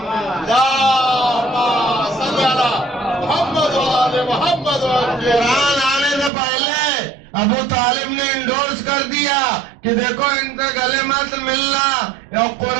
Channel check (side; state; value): left; drops out; at 6.3 s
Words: قرآن آنے سے پہلے ابو طالب نے انڈورس کر دیا کہ دیکھو ان سے گلے مت ملنا. اور